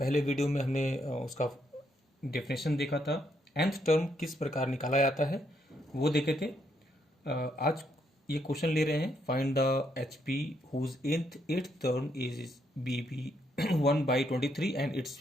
वीडियो में हमने उसका डेफिनेशन देखा था। nth टर्म किस प्रकार निकाला जाता है वो देखे थे। आज ये क्वेश्चन ले रहे हैं, find the H P whose eighth term is b b 1/23 and it's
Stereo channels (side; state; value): both; normal; correlation 0.75